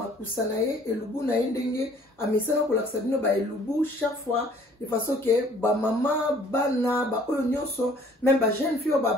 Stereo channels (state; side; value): normal; both; correlation 0.56